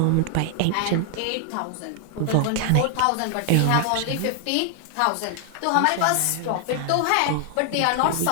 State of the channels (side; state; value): both; different; correlation 0.00